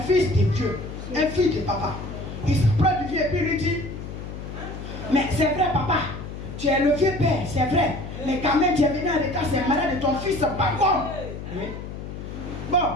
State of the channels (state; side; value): noise; left; hum, 9 dB below the sound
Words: de Dieu, un fils de papa. Il s'approche du vieux et puis il lui dit, mais c'est vrai papa, tu es le vieux père, c'est vrai. Mais quand même tu es venu en état, c'est malade de ton fils, pas comme. Oui. Bon.